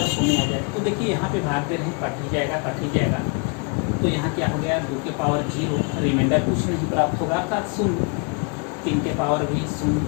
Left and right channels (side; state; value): right; quieter; 34.6 dB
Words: 0 आ जाए तो देखिए यहाँ पे भाग दे रहे हैं, कट ही जाएगा। तो यहाँ क्या हो गया 2 के पावर 0, रिमाइंडर कुछ नहीं प्राप्त होगा, अर्थात 0। 3 के पावर भी 0,